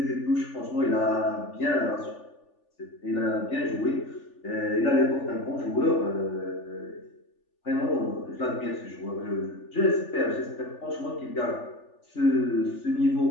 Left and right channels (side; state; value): right; late; 3.4 ms